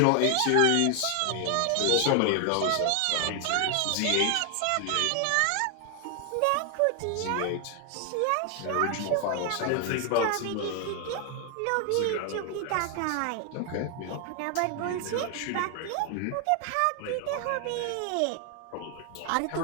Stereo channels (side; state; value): both; different; correlation 0.00